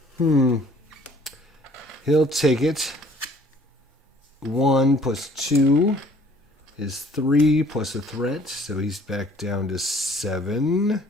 He'll take it. 1 plus 2 is 3 plus a threat, so he's back down to 7.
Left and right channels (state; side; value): normal; both; correlation 0.56